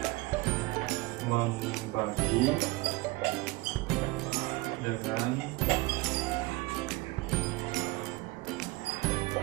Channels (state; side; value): quieter; left; 21.7 dB